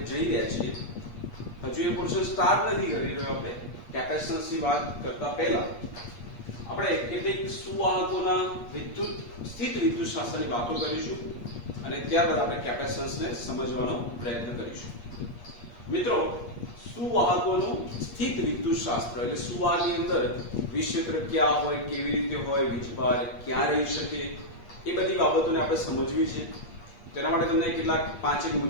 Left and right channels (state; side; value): late; right; 8.5 ms